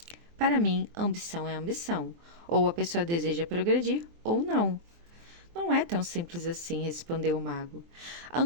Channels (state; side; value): late; left; 24 ms